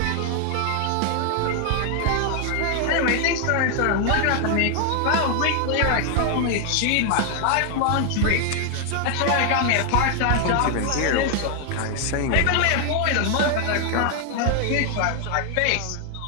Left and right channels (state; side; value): different; both; correlation 0.00